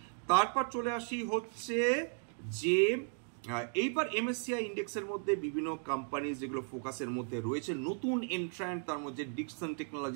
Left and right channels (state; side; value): silent; left; 54 dB below the other